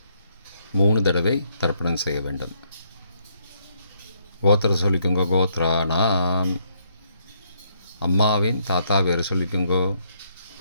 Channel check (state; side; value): inverted; both; correlation -0.71